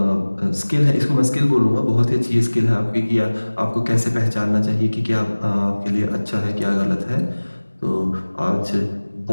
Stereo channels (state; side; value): inverted; both; correlation -1.00